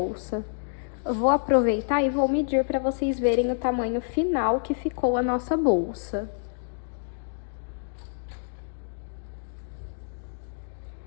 Eu vou aproveitar e vou medir para vocês verem o tamanho final que ficou a nossa bolsa.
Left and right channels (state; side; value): silent; right; digital silence